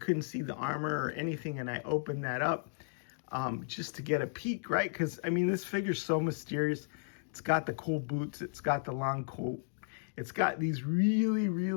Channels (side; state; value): right; silent; digital silence